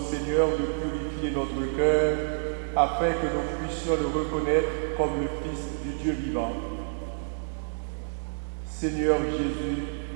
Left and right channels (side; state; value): left; silent; digital silence